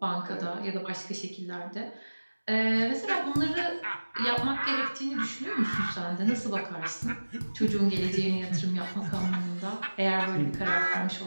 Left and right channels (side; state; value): both; inverted; correlation -1.00